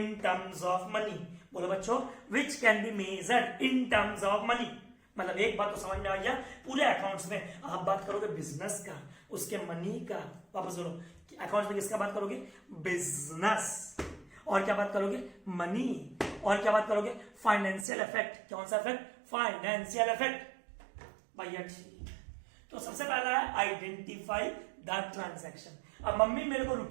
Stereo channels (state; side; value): drops out; left; at 17.9 s